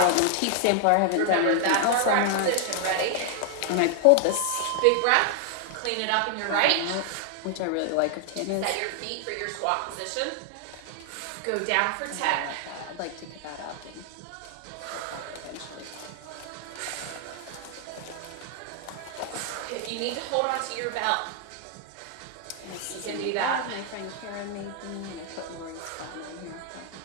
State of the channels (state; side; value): different; both; correlation 0.00